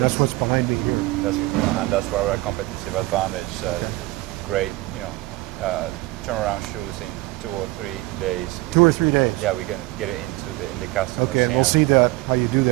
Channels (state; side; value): quieter; left; 20.3 dB